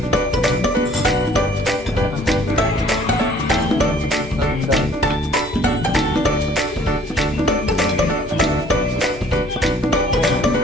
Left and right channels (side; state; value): both; normal; correlation 0.58